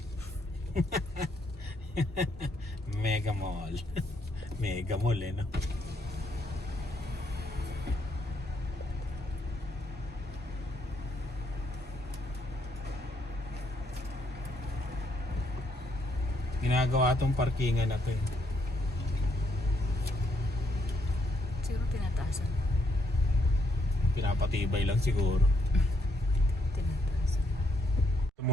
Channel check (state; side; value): normal; both; correlation 0.74